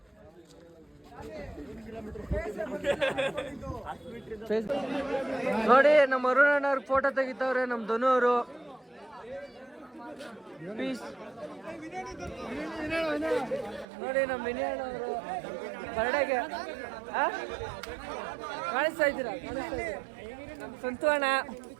ನೋಡಿ ನಮ್ಮ ಅರುಣ್ ಅಣ್ಣವ್ರ ಫೋಟೋ ತೆಗಿತಾವ್ರೆ ನಮ್ ಧನು ಅವರು. ಪೀಸ್ ನೋಡಿ ನಮ್ಮ ವಿನಯಣ್ಣ ಅವರು ಬರ್ಡೇಗೆ ಕಾಣಿಸ್ತಾ ಇದ್ದೀರಾ? ನಮ್ಮ ಸಂತು ಅಣ್ಣ,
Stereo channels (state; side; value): drops out; left; at 13.9 s